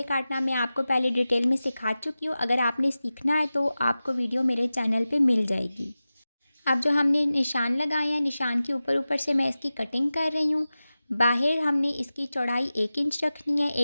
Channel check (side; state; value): both; inverted; correlation -0.95